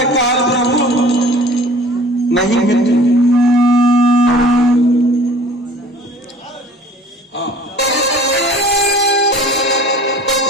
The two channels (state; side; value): normal; both; correlation 0.48